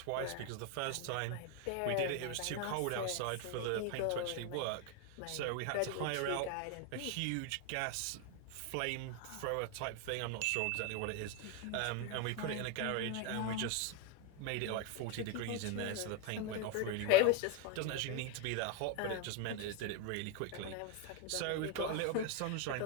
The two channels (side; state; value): both; different; correlation 0.01